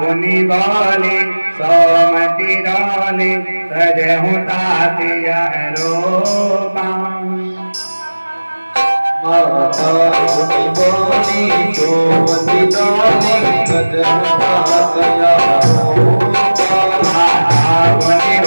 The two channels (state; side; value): inverted; both; correlation -1.00